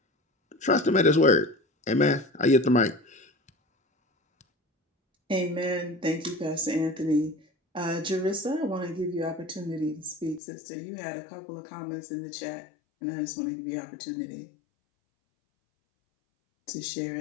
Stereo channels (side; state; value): right; drops out; at 10.4 s